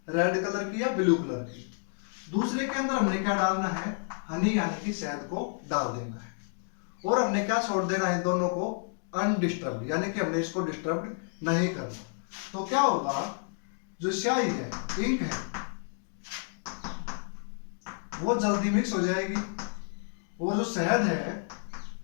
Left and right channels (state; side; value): silent; right; 58 dB below the other